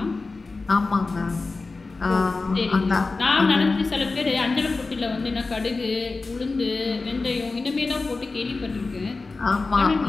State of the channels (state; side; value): quieter; right; 3.8 dB